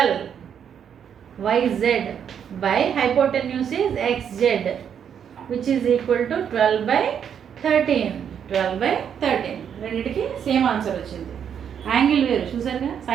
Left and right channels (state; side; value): quieter; left; 8.2 dB